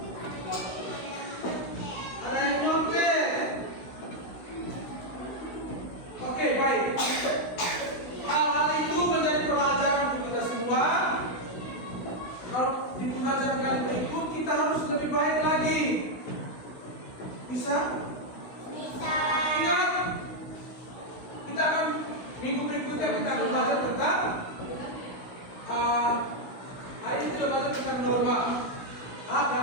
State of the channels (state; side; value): late; right; 16 ms